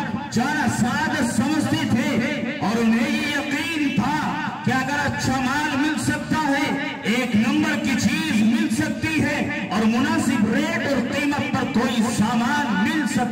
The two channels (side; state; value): both; identical; correlation 1.00